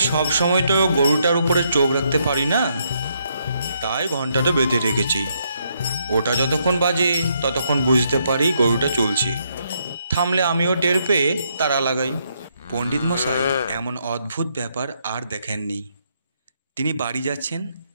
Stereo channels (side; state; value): both; inverted; correlation -0.75